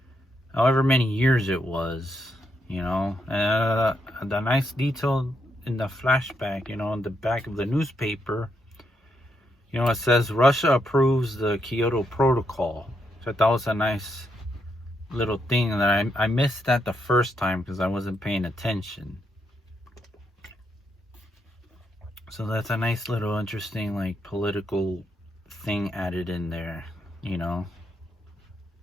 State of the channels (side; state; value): both; normal; correlation 0.79